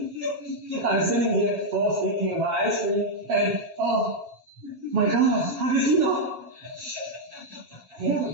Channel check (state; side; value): late; left; 7.4 ms